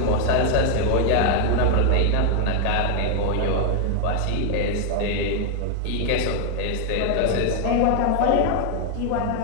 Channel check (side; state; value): both; different; correlation 0.00